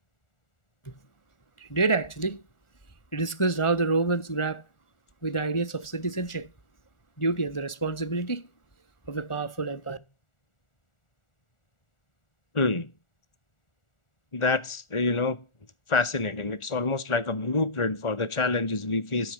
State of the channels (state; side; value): late; right; 1.4 ms